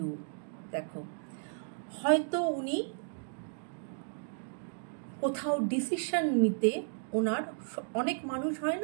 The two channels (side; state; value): left; silent; digital silence